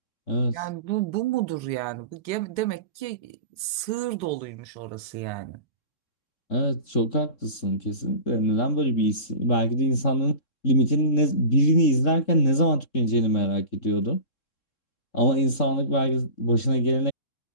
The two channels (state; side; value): late; right; 3.7 ms